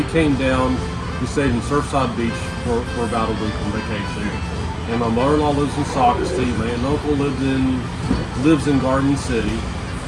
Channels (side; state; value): both; identical; correlation 1.00